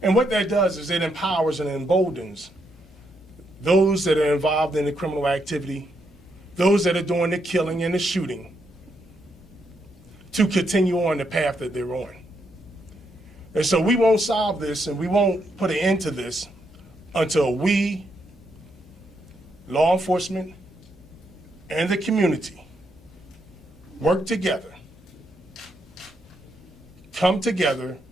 And what that does is it empowers and emboldens those that are involved in the criminal activity, those that are doing the killing and the shooting, to continue on the path that they're on. And so we won't solve this, and we won't put an end to this until we, law enforcement, and the community work together, come together,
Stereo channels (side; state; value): both; normal; correlation 0.79